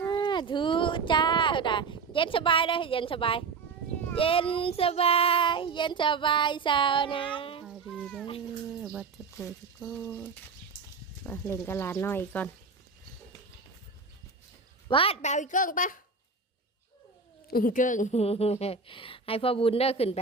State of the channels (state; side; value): quieter; left; 4.6 dB